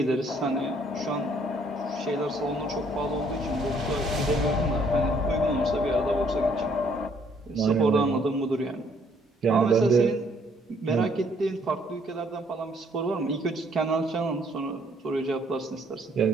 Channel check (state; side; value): normal; both; correlation 0.65